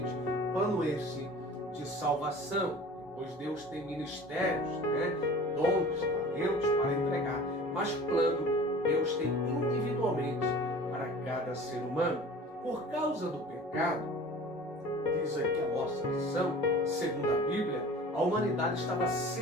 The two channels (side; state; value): both; normal; correlation 0.42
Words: Plano esse de salvação, pois Deus tem ministérios, dons, talentos para entregar, mas plano Deus tem individualmente para cada ser humano. Por causa do pecado, diz aqui a nossa lição, segundo a Bíblia, a humanidade estava